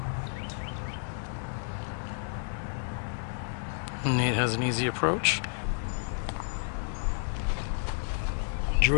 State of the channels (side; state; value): right; silent; digital silence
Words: Nate has an easy approach.